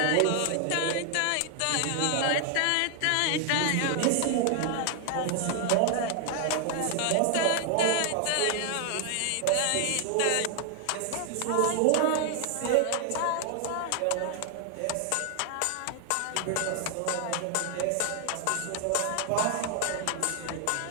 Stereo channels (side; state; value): both; different; correlation 0.00